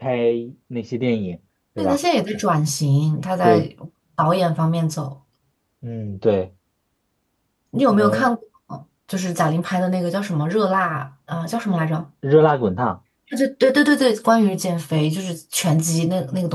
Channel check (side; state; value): both; identical; correlation 1.00